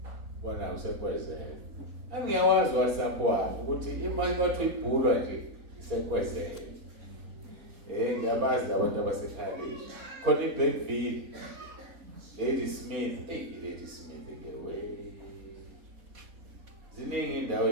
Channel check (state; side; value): late; left; 4.2 ms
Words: bona usekwezela angiyawazi WhatsApp wami ukuthi imali kwathi ibhulwa nje isekwezela ngiyabazi abantu abasekhaya khona iBackville Lady Smith Lady Smith ngewe ziningi indawo